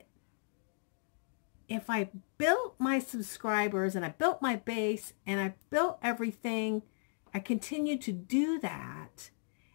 if I built my subscribers and I built my base and I built everything, I continue to do that.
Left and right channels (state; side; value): silent; right; digital silence